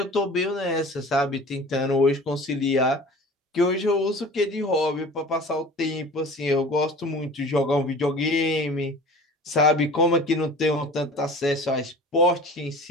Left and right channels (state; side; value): normal; both; correlation 0.41